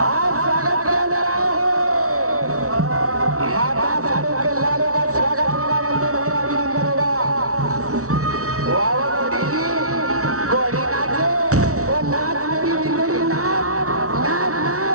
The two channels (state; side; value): late; left; 0.64 ms